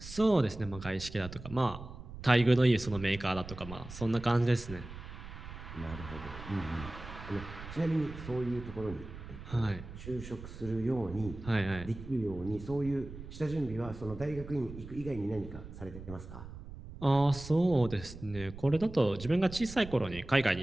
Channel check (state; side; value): noise; right; rumble, 13 dB below the sound